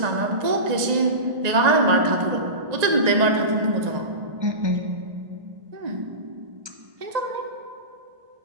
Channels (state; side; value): late; left; 1.8 ms